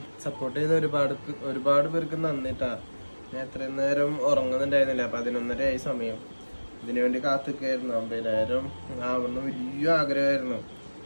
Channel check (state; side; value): inverted; both; correlation -1.00